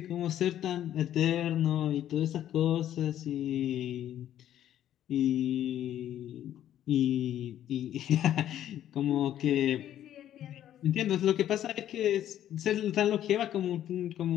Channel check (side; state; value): right; quieter; 11.5 dB